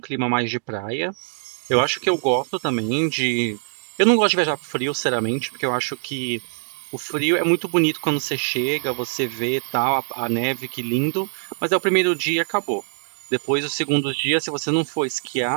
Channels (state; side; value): silent; left; digital silence